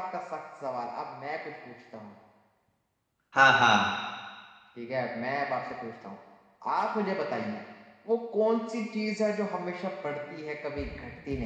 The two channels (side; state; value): both; identical; correlation 1.00